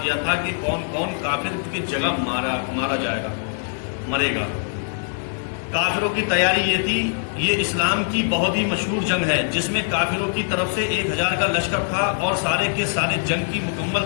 دیا تھا کہ کون کون کافر کی جگہ مارا جائے گا، مرے گا۔ کافروں کی تیاری یہ تھی، یہ اسلام کی بہت ہی مشہور جنگ ہے جس میں کافروں کی طرف سے 1000 کا لشکر تھا اور سارے کے سارے جنگ کی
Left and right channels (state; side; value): silent; right; digital silence